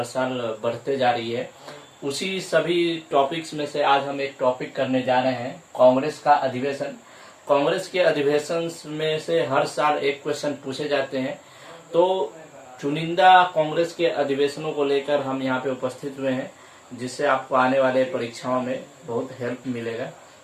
साल बढ़ते जा रही है। उसी सभी टॉपिक्स में से आज हम एक टॉपिक करने जा रहे हैं, कांग्रेस का अधिवेशन। कांग्रेस के अधिवेशन में से हर साल एक क्वेश्चन पूछे जाते हैं, तो चुनिंदा कांग्रेस के अधिवेशनों को लेकर हम यहाँ पे उपस्थित हुए हैं, जिससे आपको आने वाले परीक्षाओं में बहुत हेल्प मिलेगा।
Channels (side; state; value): both; identical; correlation 1.00